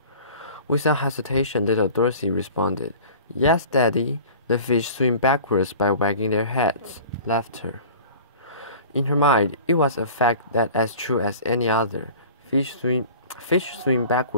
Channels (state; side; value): inverted; both; correlation -0.42